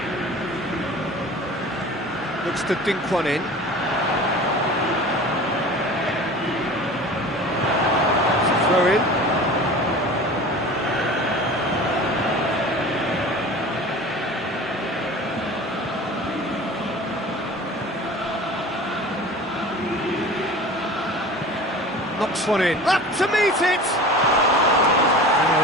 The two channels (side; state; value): both; normal; correlation 0.38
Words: Looks to dink one in. Throw in. Knocks one in. Up to meet it! Oh,